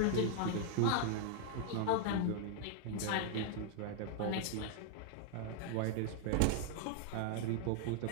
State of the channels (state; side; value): different; both; correlation 0.00